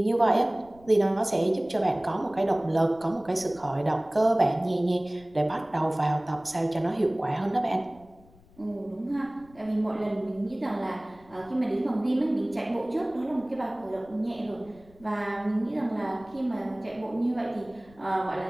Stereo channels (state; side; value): noise; left; rumble, 26 dB below the sound